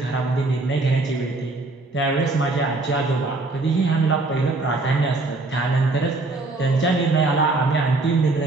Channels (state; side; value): quieter; left; 3.2 dB